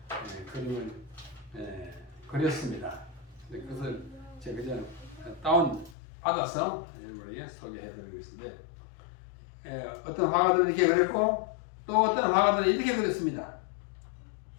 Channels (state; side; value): drops out; right; at 6.0 s